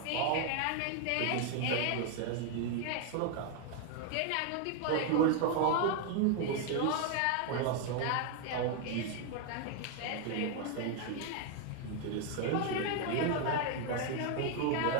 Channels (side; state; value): both; different; correlation 0.01